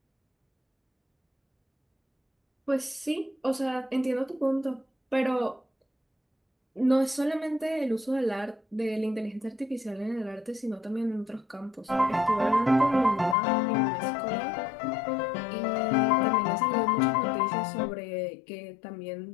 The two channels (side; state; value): right; drops out; at 13.4 s